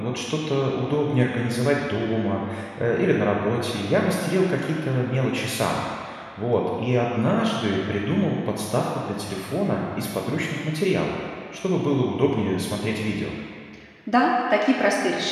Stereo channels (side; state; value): both; identical; correlation 1.00